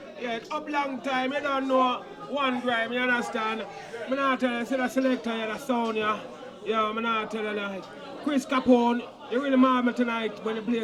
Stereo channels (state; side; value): identical; both; correlation 1.00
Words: Yeah, it's up long time. You don't know one grime, you understand? I'm not tell you, see the selector, you the sound, yeah. Yeah, I'm not tell you, like, Chris Capone, you really mad me tonight when you